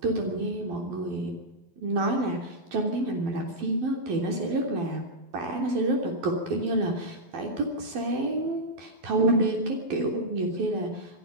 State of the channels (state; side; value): late; left; 12 ms